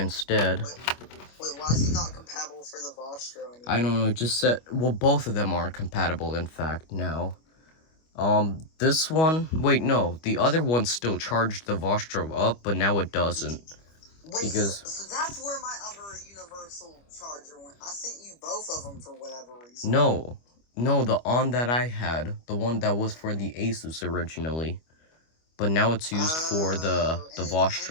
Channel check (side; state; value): right; late; 25 ms